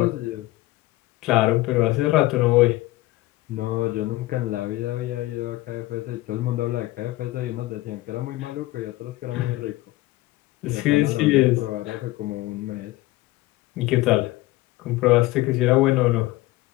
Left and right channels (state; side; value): quieter; right; 18.3 dB